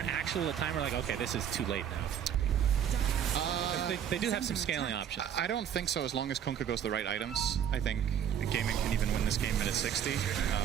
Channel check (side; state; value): left; quieter; 9.1 dB